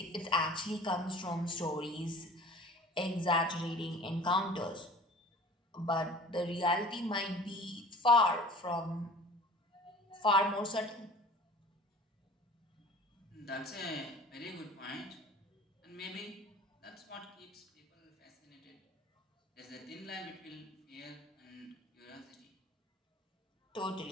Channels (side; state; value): both; normal; correlation 0.44